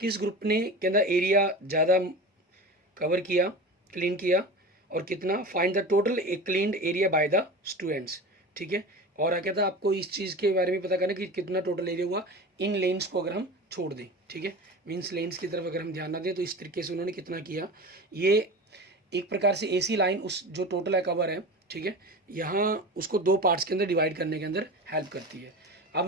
ग्रुप ने कहना एरिया ज़्यादा कवर किया, क्लीन किया, और कितना, find the total cleaned area by the students. ठीक है, और क्या था आपको इस चीज़ के बारे में पता करना कि कितना टोटल एरिया हुआ इन लेन्स को अगर हम छोड़ दें। ठीक है, मीन्स लेन्स की तरफ अगर हम ध्यान ना दें तो इस तरीके से उन्होंने कितना किया। ये एक प्रकार से एसी लाइन उस जो टोटल है कवर है, ठीक है, यहाँ उसको 2 पार्ट्स के अंदर डिवाइड करने के अंदर हेल्प करती है। अब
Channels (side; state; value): both; normal; correlation 0.31